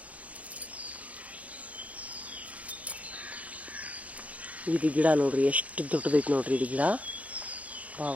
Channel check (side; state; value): left; late; 0.068 ms